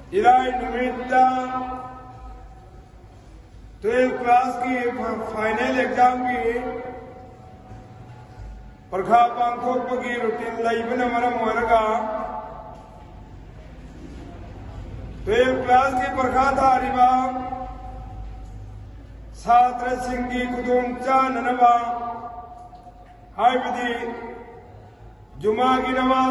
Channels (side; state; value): both; identical; correlation 1.00